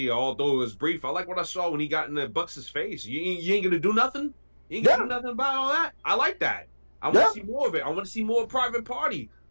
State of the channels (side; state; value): both; inverted; correlation -1.00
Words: although it was brief. I like what I saw when he got in the Bucks' face. You ain't gonna do nothing. You ain't gonna do nothing about all that. I like that. I want to see more of it. I want to see more Private Party.